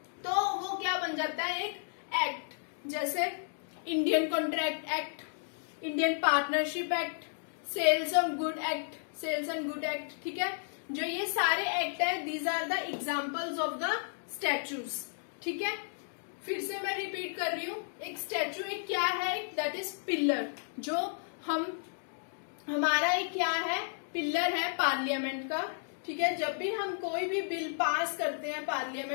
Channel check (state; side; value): silent; right; digital silence